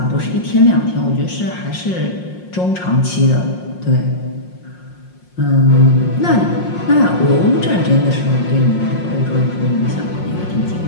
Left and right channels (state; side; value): late; right; 5.6 ms